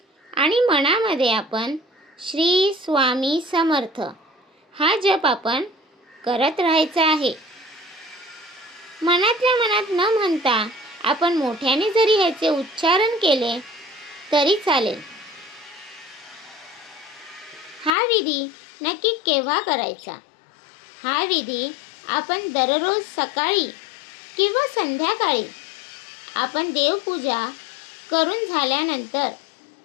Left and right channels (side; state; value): right; drops out; at 17.9 s